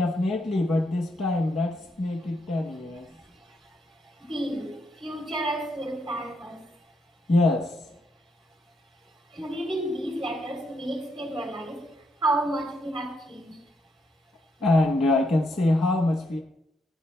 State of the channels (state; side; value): normal; both; correlation 0.78